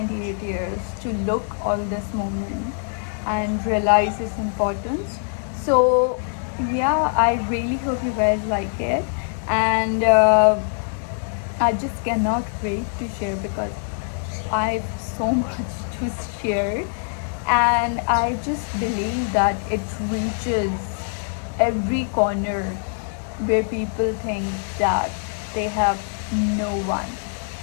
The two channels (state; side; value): silent; right; digital silence